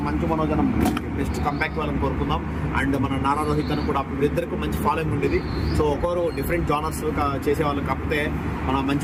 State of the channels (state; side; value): identical; both; correlation 1.00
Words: మంచు మనోజ్ అన్న బెస్ట్ కంబ్యాక్ వాళ్ళని కోరుకుందాం. అండ్ మన నారా రోహిత్ అని కూడా ఇద్దరికి మంచి ఫాలోయింగ్ ఉండేది. సో ఒకరు డిఫరెంట్ జానర్స్ చేసేవాళ్ళు. కాకపోతే మన